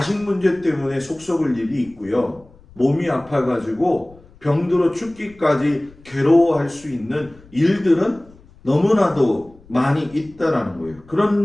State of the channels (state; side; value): noise; left; rumble, 25 dB below the sound